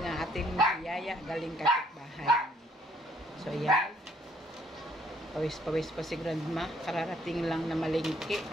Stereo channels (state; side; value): normal; both; correlation 0.66